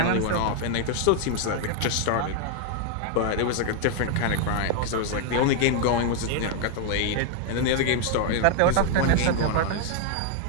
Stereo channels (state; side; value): different; both; correlation 0.00